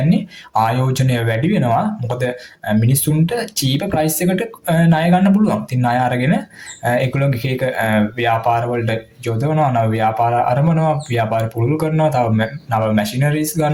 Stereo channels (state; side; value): identical; both; correlation 1.00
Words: ආයෝජනය වැඩි වෙනවා. මොකද මිනිස්සුන්ට චීප ප්‍රයිස් එකට ණය ගන්න පුළුවන්. ඉතින් ණය අරගෙන ඒගොල්ලෝගේ එක ව්‍යාපාර වලට යොදවනවා, නව ව්‍යාපාර ආරම්භනවා, ව්‍යාපාර පුරුදු කරනවා, තව නව මැෂිනරිස්